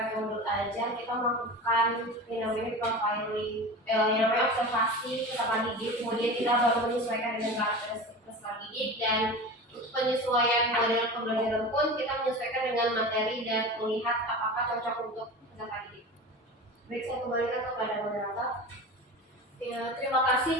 modul ajar, kita melakukan yang namanya profiling, yang namanya observasi peserta didik, kemudian kita baru menyesuaikan dengan karakteristik peserta didik, dan untuk penyesuaian model pembelajaran pun kita menyesuaikan dengan materi dan melihat apakah cocok untuk peserta didik. Baik, saya kembalikan kepada moderator. Ya, terima kasih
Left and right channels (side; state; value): both; normal; correlation 0.31